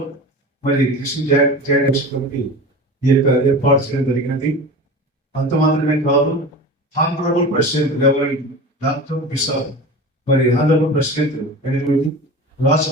మరి క్రిస్టియన్ జాయింట్ యాక్షన్ కమిటీ ఈ యొక్క ఏర్పాటు చేయడం జరిగినది. అంత మాత్రమే కాదు, honourable president reverend doctor bishop మరి హానరబుల్ ప్రెసిడెంట్ ఎనిమిది రాజ్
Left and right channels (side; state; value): both; normal; correlation 0.32